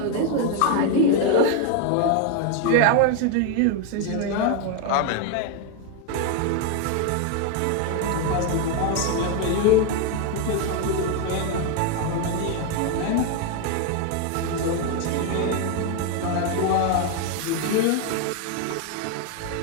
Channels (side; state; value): both; different; correlation 0.01